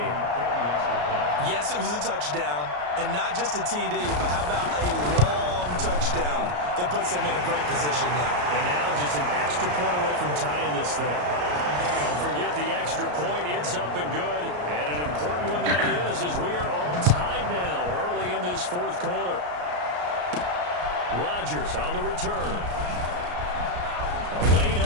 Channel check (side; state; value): left; late; 34 ms